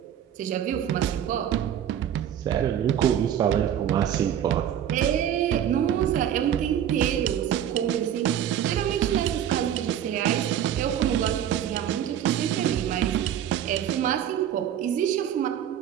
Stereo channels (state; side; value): quieter; left; 10.0 dB